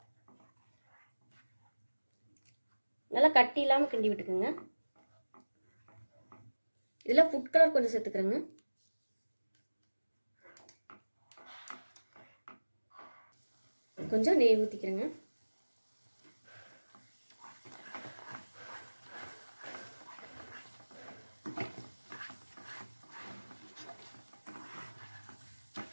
நல்லா கட்டி இல்லாமல் கிண்டி விட்டுக்குங்க. இதில் ஃபுட் கலர் கொஞ்சம் சேர்த்துக்கிறேங்க. கொஞ்சம் நெய் ஊற்றிக்கிறேங்க.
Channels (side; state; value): both; inverted; correlation -1.00